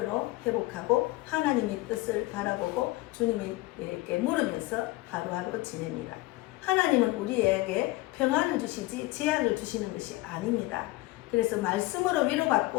회복하고 하나님의 뜻을 바라보고 주님에게 물으면서 하루하루 지냅니다. 하나님은 우리에게 평안을 주시지 재앙을 주시는 것이 아닙니다. 그래서 말씀으로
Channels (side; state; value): right; quieter; 20.0 dB